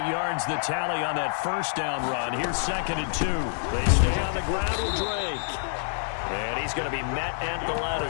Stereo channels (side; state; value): right; silent; 56 dB below the other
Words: yards the tally on that first down run. Here's 2nd and 2. They stay on the ground with Drake. And he's going to be met at the line of